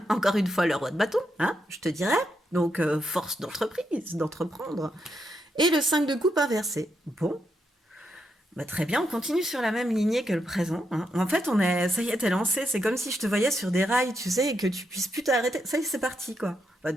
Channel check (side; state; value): both; normal; correlation 0.81